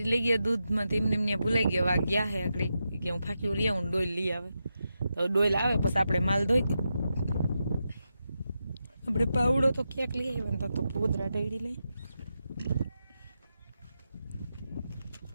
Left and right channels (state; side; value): inverted; both; correlation -0.87